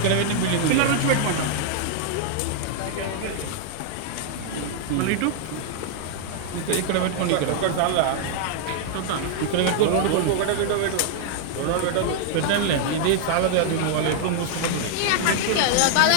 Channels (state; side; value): different; both; correlation 0.00